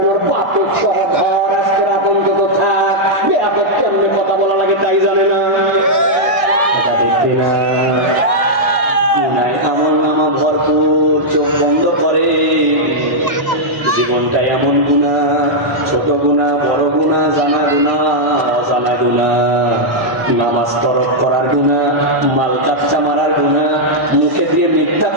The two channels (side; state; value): left; late; 1.6 ms